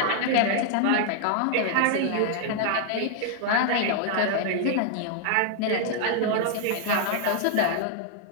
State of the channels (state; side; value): different; both; correlation 0.00